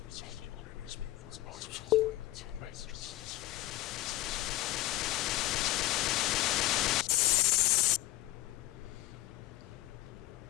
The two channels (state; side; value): quieter; right; 16.4 dB